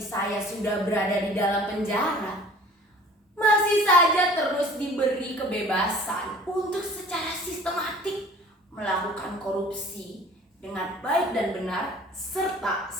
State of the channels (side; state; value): both; normal; correlation 0.48